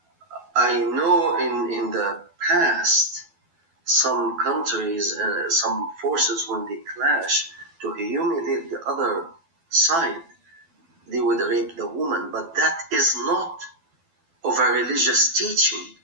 I know in the past, some countries, some forces, when they clash to humiliate the other side, they would rape the woman, but that is not of a religious teaching.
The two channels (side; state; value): left; late; 12 ms